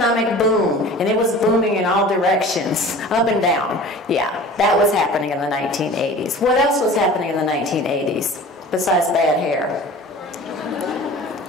boom, and it was booming in all directions, up and down. Yeah, that was happening in the 1980s. What else was happening in the 1980s besides bad hair?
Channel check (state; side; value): normal; both; correlation 0.41